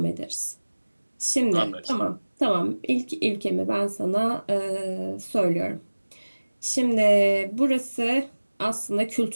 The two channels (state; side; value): inverted; both; correlation -1.00